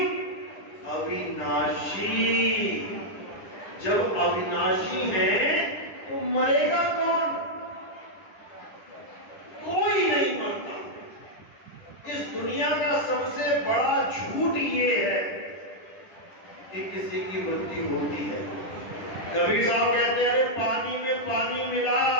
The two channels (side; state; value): right; late; 10 ms